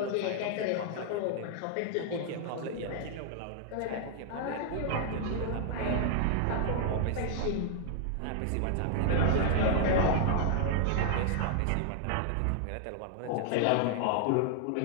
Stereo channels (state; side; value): different; both; correlation 0.00